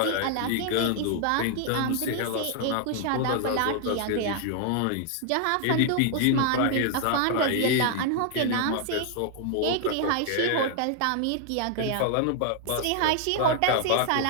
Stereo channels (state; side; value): different; both; correlation 0.00